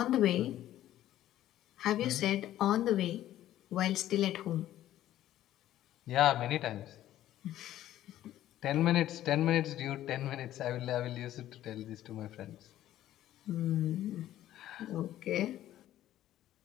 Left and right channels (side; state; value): right; quieter; 13.1 dB